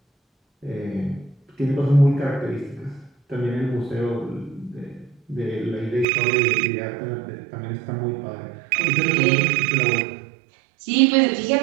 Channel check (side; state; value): left; drops out; at 6.1 s